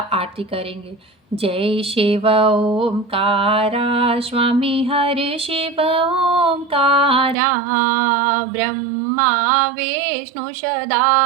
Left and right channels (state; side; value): drops out; left; at 7.4 s